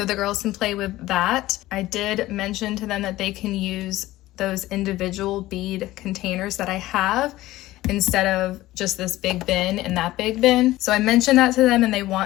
the girls can play with that. I did mention to them that they can use those individual bead containers that I have instead of just this big bin and that big bin. So I mentioned that to them and they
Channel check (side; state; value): right; quieter; 16.7 dB